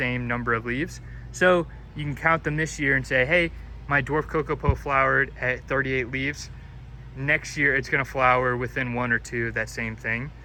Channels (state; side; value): identical; both; correlation 1.00